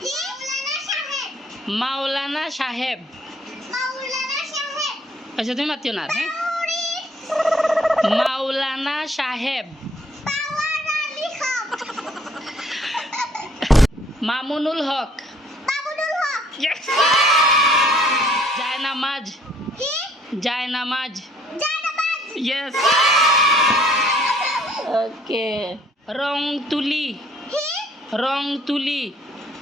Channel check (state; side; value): normal; both; correlation 0.61